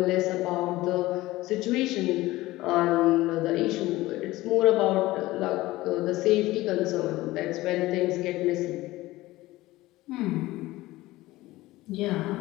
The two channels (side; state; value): right; quieter; 18.1 dB